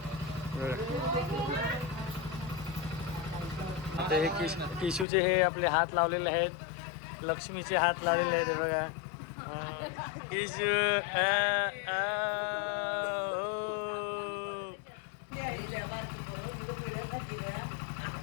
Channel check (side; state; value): right; drops out; at 5.1 s